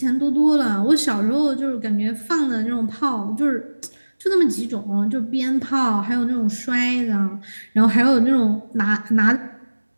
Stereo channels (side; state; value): both; inverted; correlation -1.00